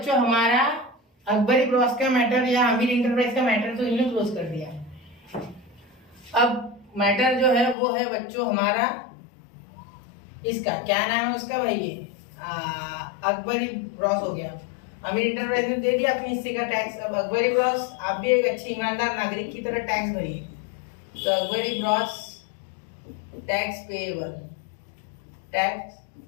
हमारा अकबरी ब्रॉस का मैटर या आमिर इंटरप्राइज का मैटर तो इन्होंने क्लोज कर दिया। अब मैटर जो है वो है बच्चों हमारा इसका क्या नाम है उसका भाई, ये अकबरी ब्रॉस हो गया। आमिर इंटरप्राइज ने दे दिया अपने हिस्से का टैक्स। अब अकबरी ब्रॉस आप भी एक अच्छे ईमानदार नागरिक की तरह टैक्स भरिए। तो Akbari bros tax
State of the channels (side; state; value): right; drops out; at 7.8 s